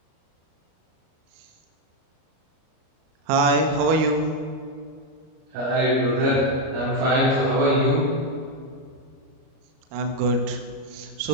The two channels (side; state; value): left; late; 38 ms